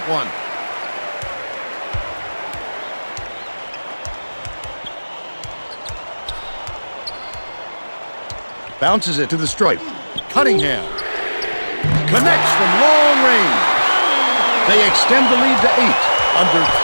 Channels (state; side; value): inverted; both; correlation -1.00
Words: one. Bounces it to the stripe. Cunningham connects from long range. They extend the lead to 8. Under